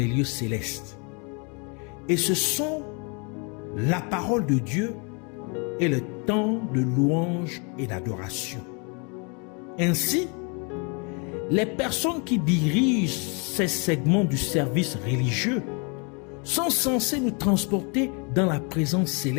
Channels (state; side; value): quieter; right; 34.4 dB